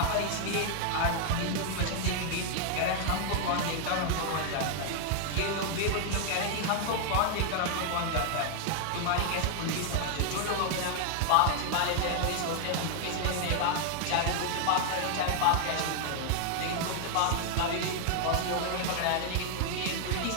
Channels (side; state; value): both; different; correlation 0.00